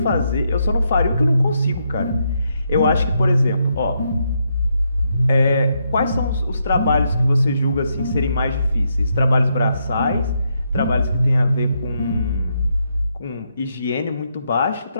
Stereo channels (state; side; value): inverted; both; correlation -0.79